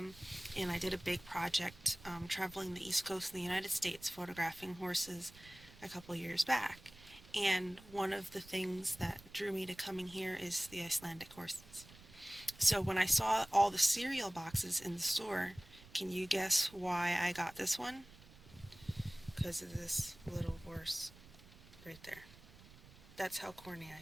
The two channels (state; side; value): noise; right; rumble, 21 dB below the sound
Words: And I did a big project traveling the East Coast of the United States, photographing horses a couple years back. And one of the things that drew me to coming here is the Icelandic horses. So when I saw all the cereal boxes in the store, can you guess why I got this one? Because of this little horse right there. That's how corny I